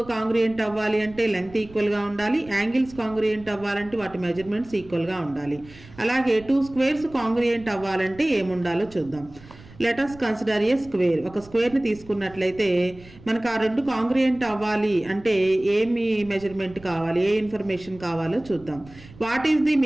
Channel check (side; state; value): right; noise; rumble, 21 dB below the sound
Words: congruent అవ్వాలి అంటే లెంగ్త్ ఈక్వల్గా ఉండాలి, యాంగిల్స్ కాంగ్రియంట్ అవ్వాలంటే వాటి మెజర్మెంట్స్ ఈక్వల్గా ఉండాలి. అలాగే 2 స్క్వేర్స్ కాంగ్రియంట్ అవ్వాలంటే ఏముండాలో చూద్దాం. లెట్ us కన్సిడర్ ఏ స్క్వేర్. ఒక స్క్వేర్ని తీసుకున్నట్లయితే మనకు ఆ రెండు కాంగ్రియంట్ అవ్వాలి అంటే ఏమి మెజర్మెంట్ కావాలి, ఏ ఇన్ఫర్మేషన్ కావాలో చూద్దాం. What is the